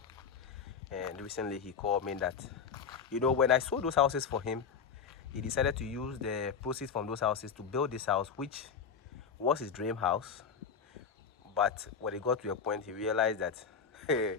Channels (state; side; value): quieter; right; 6.4 dB